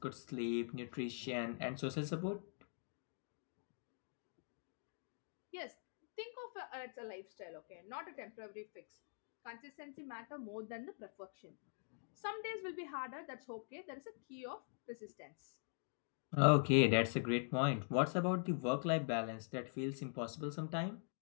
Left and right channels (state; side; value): silent; right; digital silence